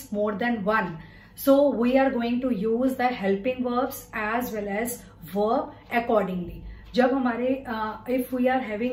more than one. So we are going to use the helping verbs as well as verb accordingly. जब हमारे if we are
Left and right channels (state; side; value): identical; both; correlation 1.00